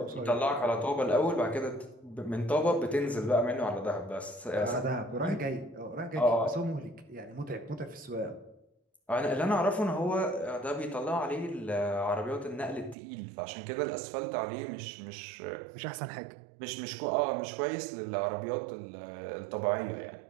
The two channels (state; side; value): drops out; left; at 13.0 s